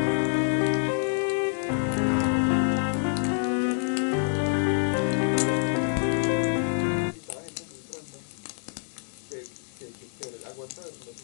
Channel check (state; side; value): silent; right; digital silence